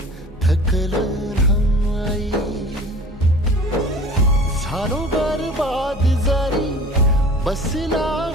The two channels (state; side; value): normal; both; correlation 0.43